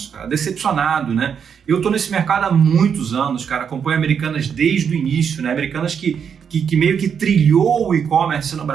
cara, decepcionado, né? Eu tô nesse mercado há muitos anos, cara, acompanho Americanas desde o início, né? Americanas que meio que trilhou o e-commerce no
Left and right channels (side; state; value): left; quieter; 7.3 dB